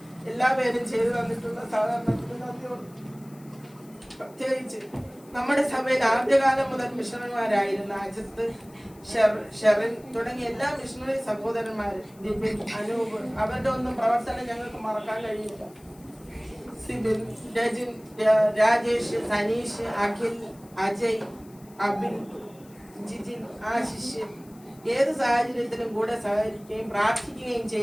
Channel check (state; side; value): noise; left; hiss, 27 dB below the sound